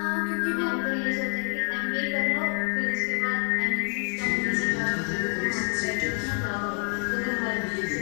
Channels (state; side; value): quieter; right; 39.9 dB